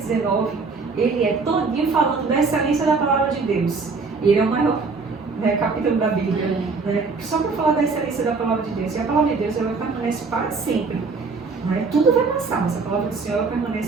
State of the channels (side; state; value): left; quieter; 4.4 dB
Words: ele é todinho falando da excelência da palavra de Deus. Ele é o maior, né, capítulo da Bíblia. Né? Só para falar da excelência da palavra de Deus. E a palavra de Deus, ela permanece para sempre. Né? Tudo vai passar, mas a palavra do Senhor ela